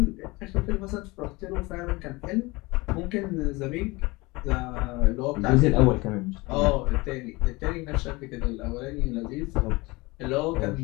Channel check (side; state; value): right; quieter; 23.4 dB